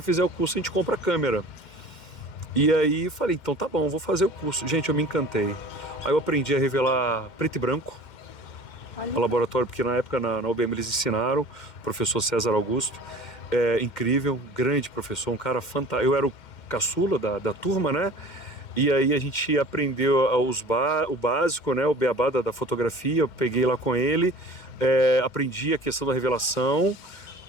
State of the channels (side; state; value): right; late; 2.1 ms